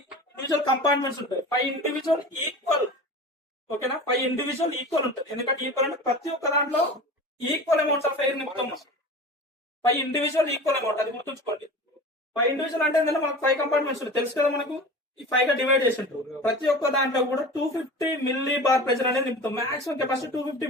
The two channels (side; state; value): both; normal; correlation 0.35